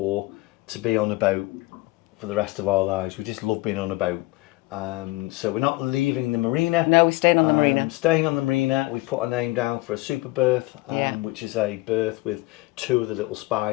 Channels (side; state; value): right; quieter; 21.1 dB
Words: to be on a boat for the rest of our lives. We just love being on a boat. So we're not leaving the marina. No, we're staying on the marina. Staying on the marina. We've put our name down for a super berth, which is a berth with 2 of the little